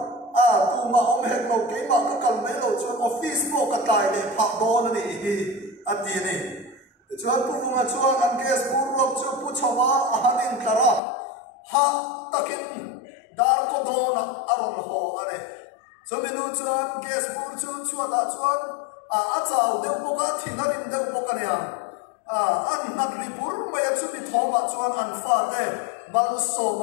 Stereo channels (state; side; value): drops out; right; at 11.0 s